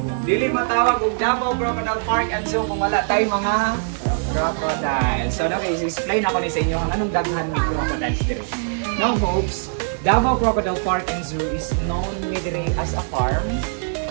dili matawag og Davao Crocodile Park and Zoo kung wala tayo mga crocodile. So now, i-explain ako ni sa inyo ang anong daghan ni crocodiles diri. Now folks, Davao Crocodile Park and Zoo is known diri as a farm.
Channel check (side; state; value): left; silent; digital silence